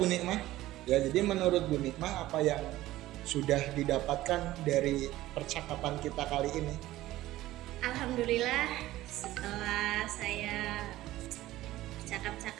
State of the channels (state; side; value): quieter; left; 15.9 dB